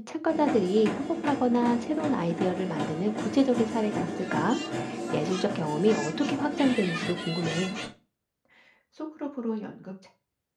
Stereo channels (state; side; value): identical; both; correlation 1.00